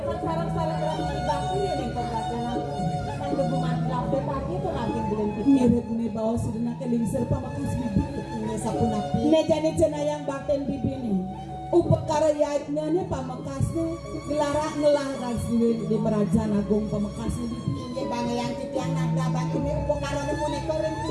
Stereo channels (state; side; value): identical; both; correlation 1.00